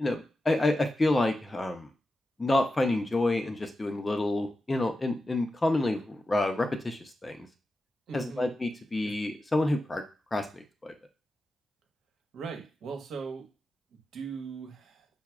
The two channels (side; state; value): both; normal; correlation 0.91